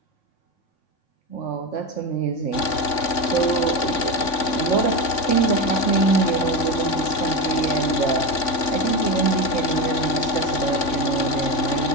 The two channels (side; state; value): right; late; 3.5 ms